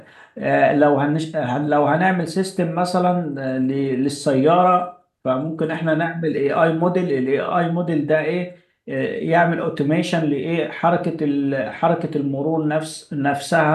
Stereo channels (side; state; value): both; identical; correlation 1.00